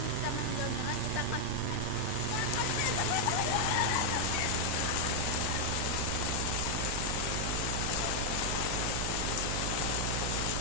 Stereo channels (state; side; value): different; both; correlation 0.00